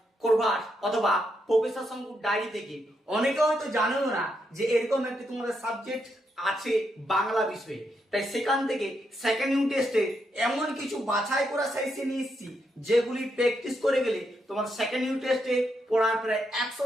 প্রভাস অথবা প্রফেসর শঙ্কুর ডায়েরি থেকে অনেকে হয়তো জানো না যে এরকম একটি তোমাদের সাবজেক্ট আছে বাংলা বিষয়ে। তাই সেখান থেকে সেকেন্ড ইউনিট টেস্টে এমন কিছু বাছাই করা সাইজে নিয়ে এসেছি যেগুলি প্র্যাকটিস করে গেলে তোমার সেকেন্ড ইউনিট টেস্টে পড়ার প্রায়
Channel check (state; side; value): normal; both; correlation 0.80